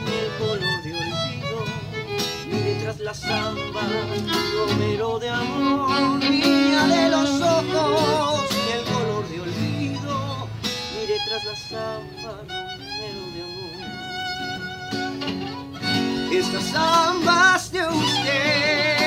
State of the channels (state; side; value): identical; both; correlation 1.00